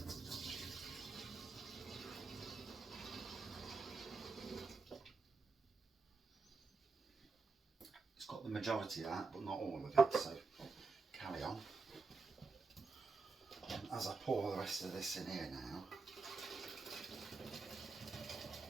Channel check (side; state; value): left; quieter; 4.2 dB